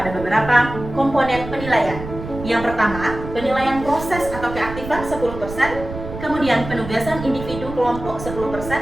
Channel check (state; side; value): noise; right; rumble, 10 dB below the sound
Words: beberapa komponen penilaian. Yang pertama, penilaian proses atau keaktifan 10%, kemudian penugasan individu kelompok 10%,